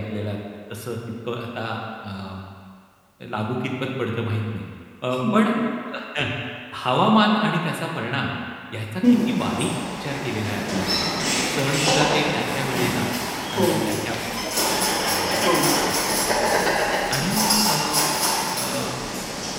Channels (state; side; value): identical; both; correlation 1.00